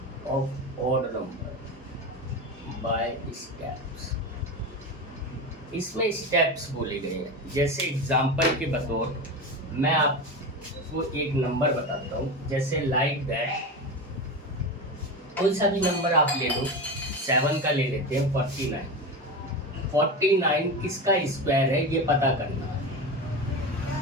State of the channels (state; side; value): normal; both; correlation 0.23